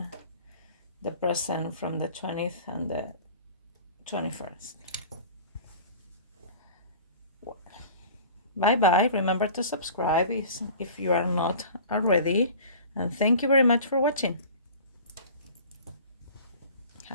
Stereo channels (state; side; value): inverted; both; correlation -0.41